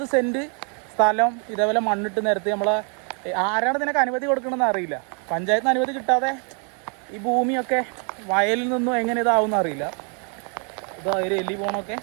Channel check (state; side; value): quieter; left; 39.1 dB